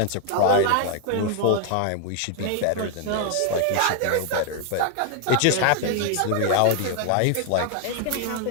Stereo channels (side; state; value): both; different; correlation 0.00